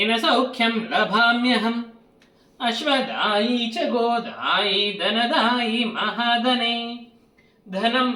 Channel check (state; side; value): identical; both; correlation 1.00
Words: सौख्यं लभाम्यहम् अश्वदायी च गोदायी धनदायी महाधने धनं